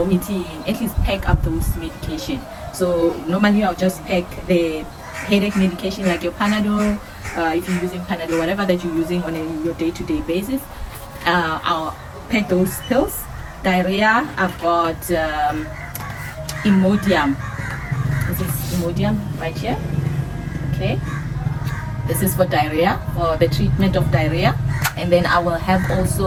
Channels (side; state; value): both; identical; correlation 1.00